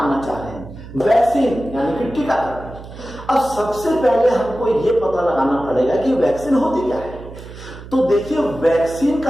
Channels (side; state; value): right; noise; hum, 15 dB below the sound